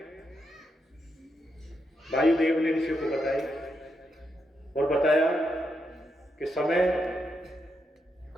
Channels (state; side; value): normal; both; correlation 0.82